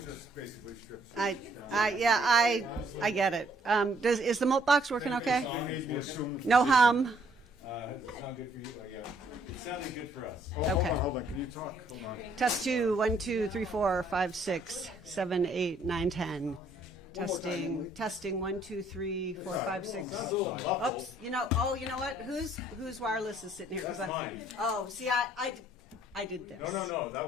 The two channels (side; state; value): both; normal; correlation 0.65